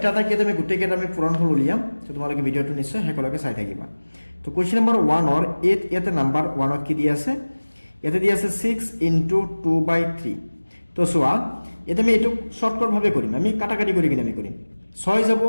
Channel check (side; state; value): both; inverted; correlation -1.00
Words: এটাকৈ আমি গোটেইকেইটা আমি পূৰণফল উলিয়াম। চ' তোমালোকে ভিডিঅ'টো নিশ্চয় শেষলৈকে চাই থাকিবা। তো কুৱেশ্যন নম্বৰ 1ৰ ইয়াতে নাম্বাৰ 1ত কি দি আছে, ইয়াতে দি আছে 6 × 2/3। তো চোৱা, ইয়াতে আমি এইটো শ্বৰ্টকাটভাৱে কৰিম, আমি কাটাকাটি কৰি কিনে আমি কৰিম। 6 যাব,